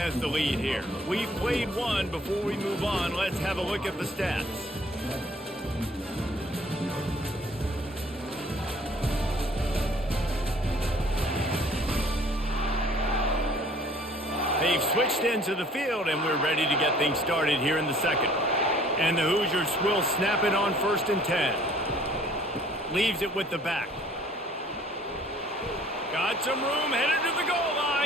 the lead here. We've played one. Before we move on, let's have a look at the stats. They've switched into the field, and we're ready to get things started here in the second. And the Hoosiers will snap it on 1st and 10. Leaves it with the back. Got some room, headed to the goal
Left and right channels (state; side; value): normal; both; correlation 0.55